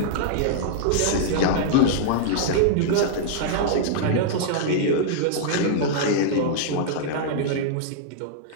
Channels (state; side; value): different; both; correlation -0.02